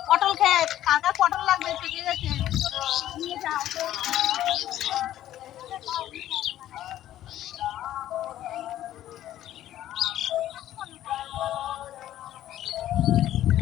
পটল ক্ষেত, কার কার পটল লাগবে পেকে গেছে নিয়ে যাও।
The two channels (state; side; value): quieter; right; 12.8 dB